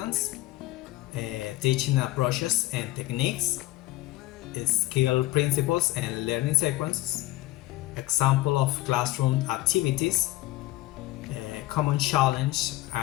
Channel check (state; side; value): quieter; right; 17.0 dB